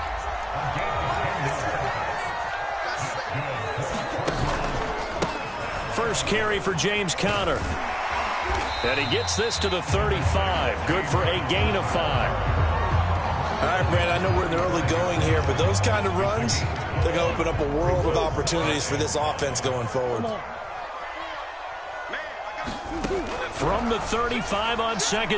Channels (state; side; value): identical; both; correlation 1.00